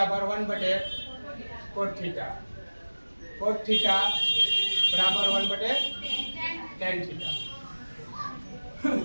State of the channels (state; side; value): inverted; both; correlation -1.00